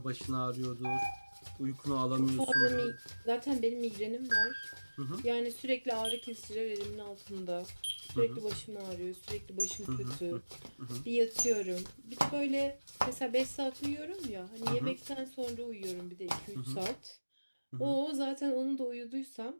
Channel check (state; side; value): inverted; both; correlation -1.00